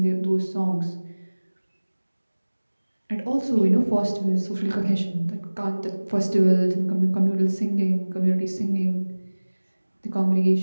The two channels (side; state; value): both; inverted; correlation -1.00